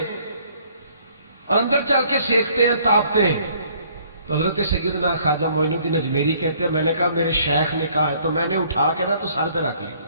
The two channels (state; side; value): inverted; both; correlation -0.61